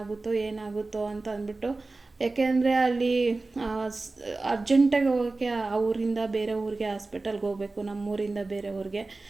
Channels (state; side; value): quieter; left; 3.4 dB